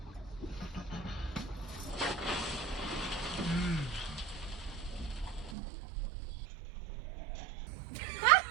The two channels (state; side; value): drops out; left; at 5.6 s